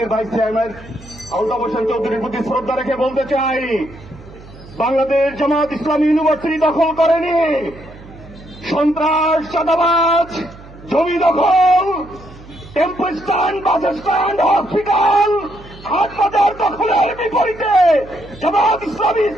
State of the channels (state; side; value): noise; right; hum, 19 dB below the sound